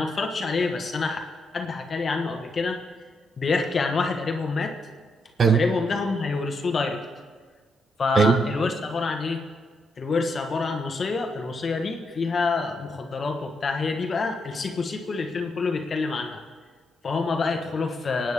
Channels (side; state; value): both; normal; correlation 0.80